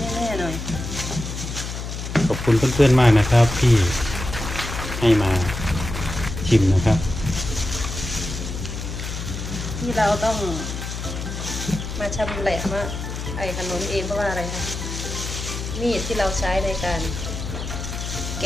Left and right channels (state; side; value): noise; left; hum, 6 dB below the sound